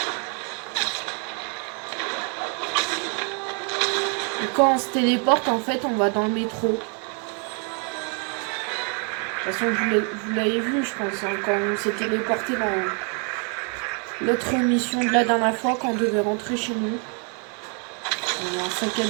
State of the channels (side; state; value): left; quieter; 39.6 dB